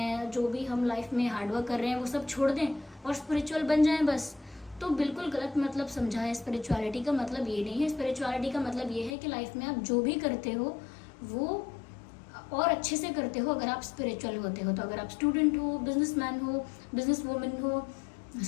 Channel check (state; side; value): drops out; right; at 9.2 s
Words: जो भी हम लाइफ में हार्डवर्क कर रहे हैं वो सब छोड़ दें और स्पिरिचुअल बन जाएं बस। तो बिल्कुल गलत मतलब समझा है। स्पिरिचुअलिटी का मतलब ये नहीं है। स्पिरिचुअलिटी का मतलब ये है कि लाइफ में आप जो भी करते हो वो और अच्छे से करते हो अगर आप स्पिरिचुअल होते हो। तो अगर आप स्टूडेंट हो, बिजनेसमैन हो, बिजनेस वूमेन हो,